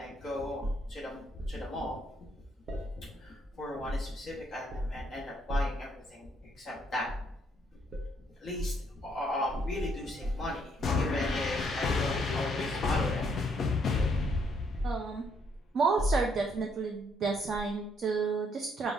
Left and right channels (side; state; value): both; normal; correlation 0.70